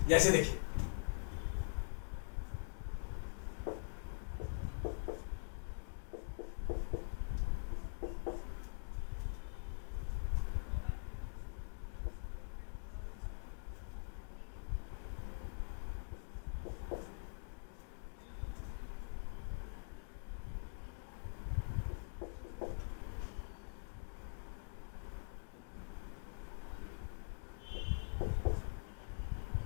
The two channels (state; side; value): silent; right; digital silence